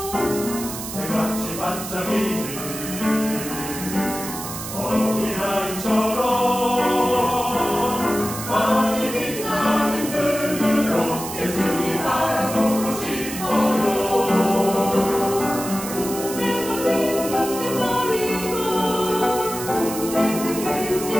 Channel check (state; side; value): noise; right; hiss, 8 dB below the sound